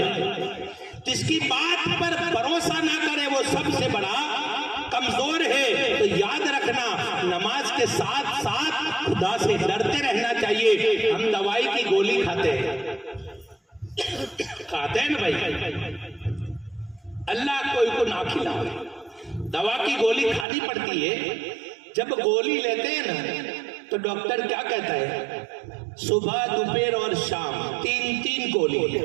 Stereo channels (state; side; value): drops out; left; at 20.5 s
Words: जिसकी बात पर भरोसा ना करे वो सबसे बड़ा कमजोर है। तो याद रखना, नमाज के साथ साथ खुदा से डरते रहना चाहिए। हम दवाई की गोली खाते हैं, खाते हैं ना भाई, अल्लाह कोई को ना खिलाए, दवा की गोली खानी पड़ती है। जब गोली लेते हैं ना तो डॉक्टर क्या कहता है? सुबह दोपहर और शाम 3-3 गोली